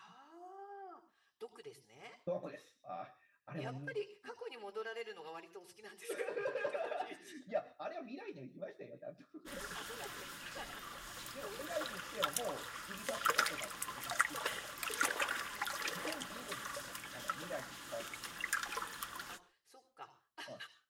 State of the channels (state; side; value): identical; both; correlation 1.00